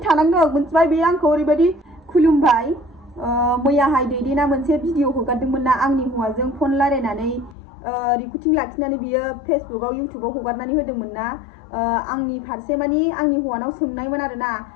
थानांदों मोनथिबाय बे आंखौ ओरैबायदि खुलुमबाय मैयाहाय दैदेना मोनसे भिडिअ हगारदोंमोन ना आंनि हौवाजों फन रायलायनानै रिकर्डिं लाखिनानै बियो फेसबुकआव इउटुबाव हगारनानै होदोंमोन ना आंनि फारसे मानि आंनि हौवानाव सोंनायमोन आरोना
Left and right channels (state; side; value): drops out; right; at 7.6 s